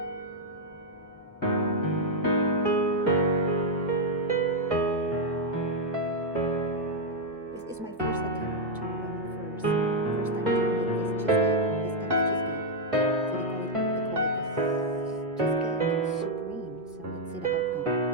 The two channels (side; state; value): both; normal; correlation -0.01